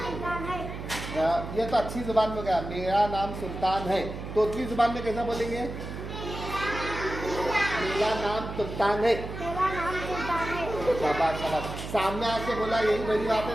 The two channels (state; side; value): noise; right; hum, 8 dB below the sound